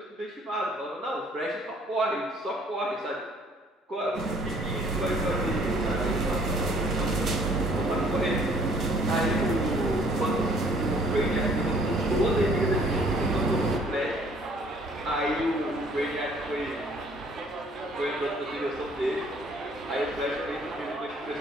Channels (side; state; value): both; normal; correlation 0.59